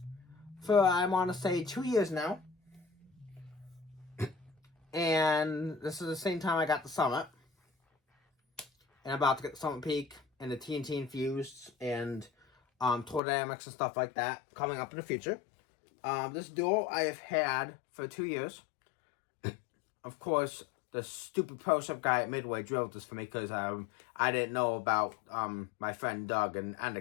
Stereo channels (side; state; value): right; drops out; at 13.2 s